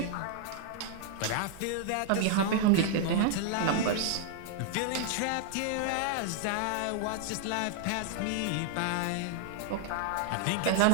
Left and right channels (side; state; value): both; different; correlation 0.00